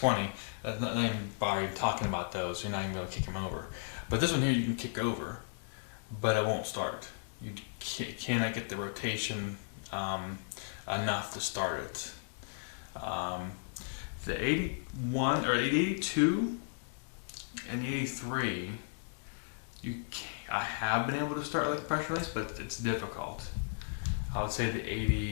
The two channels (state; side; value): silent; right; digital silence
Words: not even by talking about those, you're not even able to kick them over. But this one here you can kick over, but it won't start. You cannot get the rotation enough to start it. The 81 or 82 and the 83, I have been able to start like pressure release, but it's difficult. I would say the